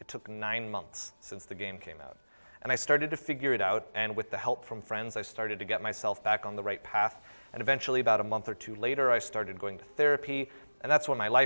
took 9 months since the game came out. And I started to figure it out, and with the help from friends, I started to get myself back on the right path. And eventually, about a month or 2 later, I started going to therapy, and that's when my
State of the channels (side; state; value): both; inverted; correlation -1.00